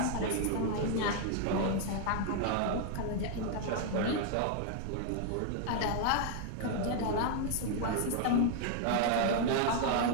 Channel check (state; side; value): different; both; correlation 0.00